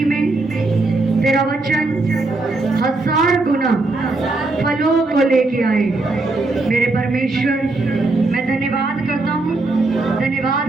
में तेरा वचन 1000 गुना फलों को लेके आए। मेरे परमेश्वर, मैं धन्यवाद करता हूँ,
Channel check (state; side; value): quieter; left; 3.2 dB